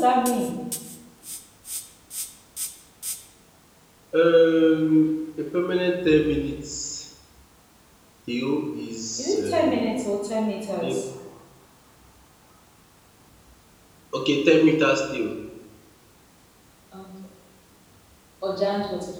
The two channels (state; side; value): identical; both; correlation 1.00